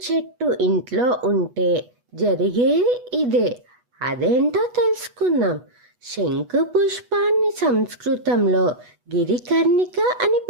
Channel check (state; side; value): late; left; 8.2 ms